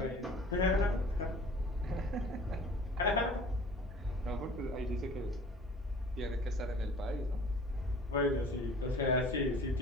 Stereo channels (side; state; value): both; normal; correlation 0.47